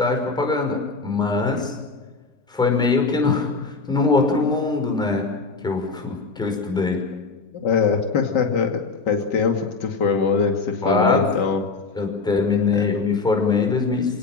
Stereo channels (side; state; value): right; quieter; 4.2 dB